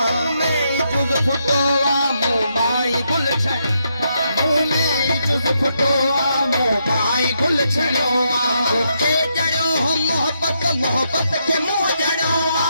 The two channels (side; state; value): both; inverted; correlation -0.79